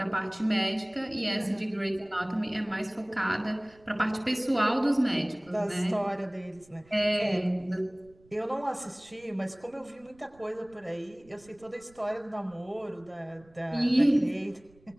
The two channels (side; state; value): right; noise; rumble, 28 dB below the sound